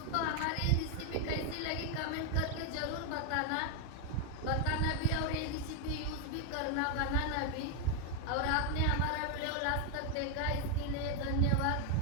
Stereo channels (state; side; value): different; both; correlation 0.01